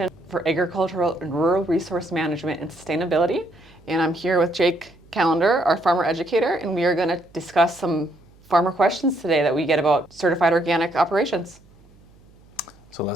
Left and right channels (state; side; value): noise; right; hum, 27 dB below the sound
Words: for Agricultural and Rural Resource Management and Sustainability. And I'm here with Jake Callender, our farmer educator, and we are going to discuss some farmer questions today that we get about certified organic operations. So